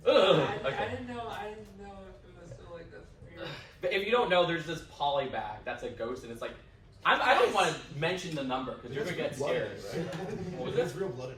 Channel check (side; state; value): both; identical; correlation 1.00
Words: I didn't know if it was still like this. But if you don't know, there's this poly bag that's a ghost, and it's like, I don't want to mention the number because you're gonna get scared. What was There's it? real blood in